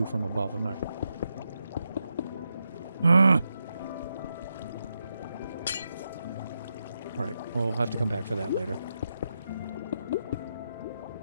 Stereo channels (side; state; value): both; inverted; correlation -0.85